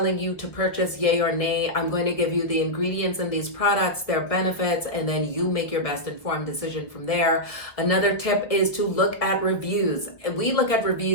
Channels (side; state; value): right; late; 1.4 ms